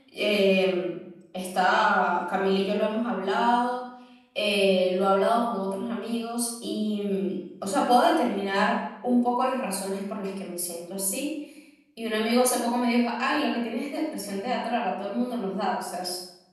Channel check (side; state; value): both; identical; correlation 1.00